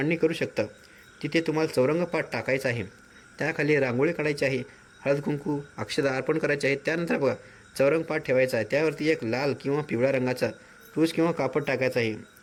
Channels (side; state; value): both; identical; correlation 1.00